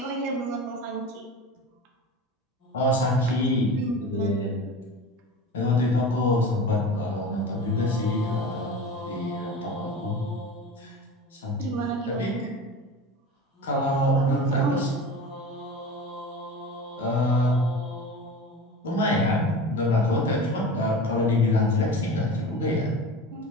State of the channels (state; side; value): normal; both; correlation 0.33